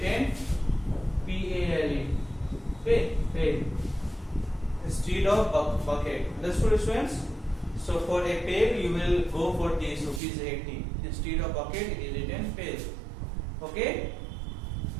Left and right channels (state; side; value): drops out; left; at 10.2 s